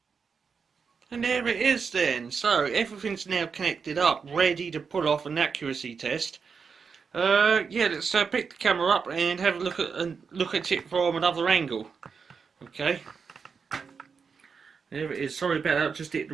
And there it is then. So everything's now connected up, ready to pull off an accuracy test. Yeah, let's pick the camera up and have a look at it from another angle. Okay. There it is. Sorry about that. I just hit the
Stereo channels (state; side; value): quieter; left; 5.7 dB